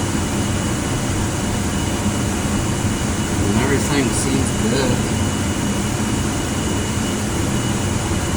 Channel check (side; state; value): both; identical; correlation 1.00